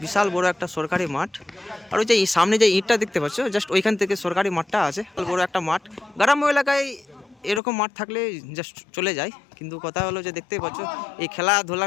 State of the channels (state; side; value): drops out; right; at 7.6 s